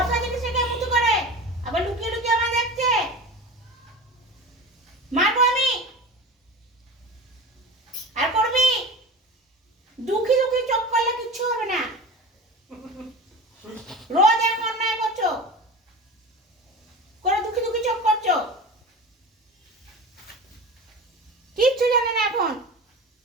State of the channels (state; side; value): normal; both; correlation 0.33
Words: জিনিস থেকে মুতু করে আবার লুকিয়ে লুকিয়ে আমার দেখছে। মারবো আমি। আর করবি? দুঃখী দুঃখী চোখ করলে কিচ্ছু হবে না। রোজ এরকম অন্যায় করছো, করে দুঃখী দুঃখী চোখ করছো, কিচ্ছু জানে না এখন।